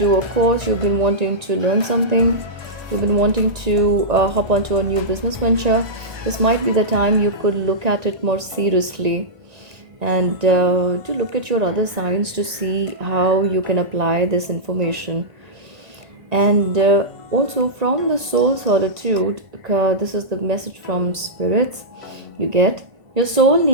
a course, you've been wanting to learn something, you've been wanting to hop onto a new business venture, this might be the time you could look at it more seriously, and to look at your other signs to see how you can apply this information. And also from the soul solitude, this is the message from spirits you get. Your soul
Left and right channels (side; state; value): left; late; 1.9 ms